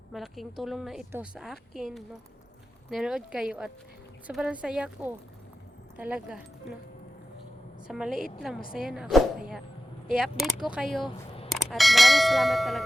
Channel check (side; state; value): both; normal; correlation 0.93